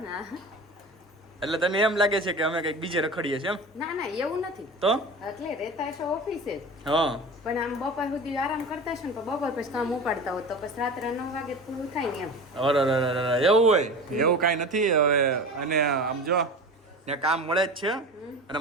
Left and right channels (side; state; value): both; normal; correlation 0.33